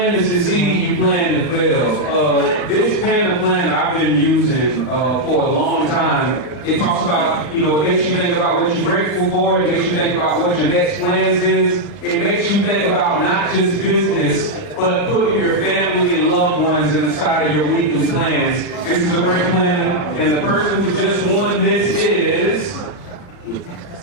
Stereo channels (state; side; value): late; right; 40 ms